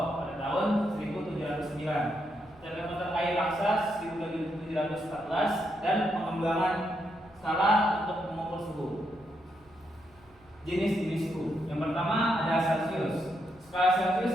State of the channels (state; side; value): noise; right; hum, 29 dB below the sound